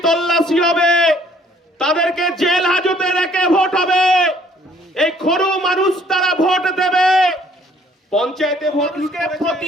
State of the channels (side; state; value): both; normal; correlation 0.61